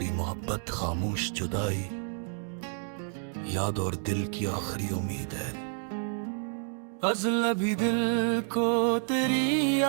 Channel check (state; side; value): silent; left; 57 dB below the other